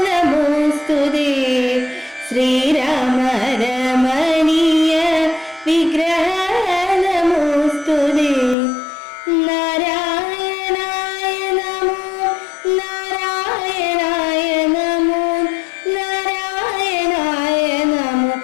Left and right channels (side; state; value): right; drops out; at 8.6 s